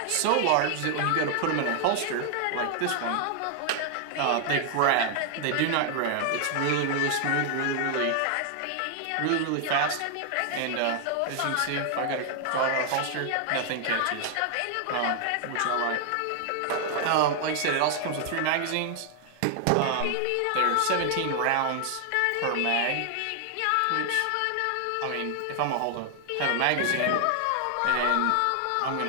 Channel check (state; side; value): different; both; correlation 0.00